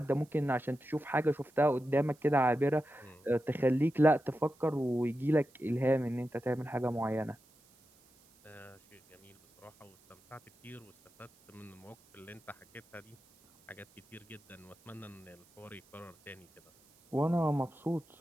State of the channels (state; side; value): noise; right; hiss, 30 dB below the sound